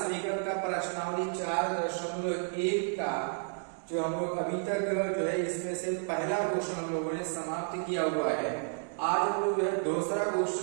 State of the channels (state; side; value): silent; left; 57 dB below the other